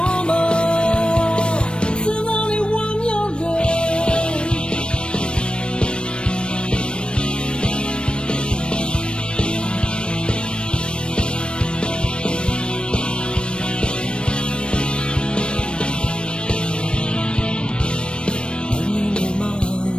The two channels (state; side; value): late; right; 0.056 ms